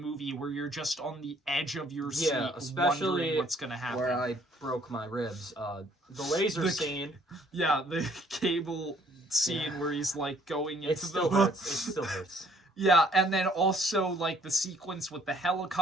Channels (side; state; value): both; normal; correlation 0.62